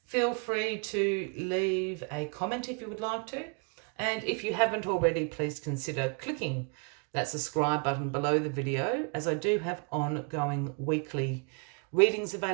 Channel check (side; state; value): left; quieter; 39.1 dB